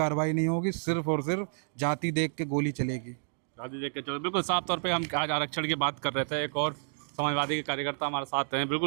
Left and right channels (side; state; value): left; silent; digital silence